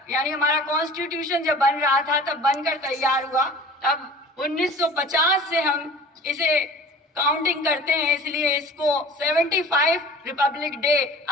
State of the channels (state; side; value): normal; both; correlation 0.43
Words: यानी हमारा कॉन्स्टिट्यूशन जब बन रहा था तब बनकर तैयार हुआ। तब 1950 से हम इसे काउंटिंग करते हैं, इसलिए इसको 75 रिपब्लिक डे